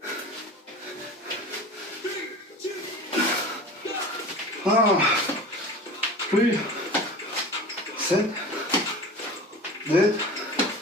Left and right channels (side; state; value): both; normal; correlation 0.36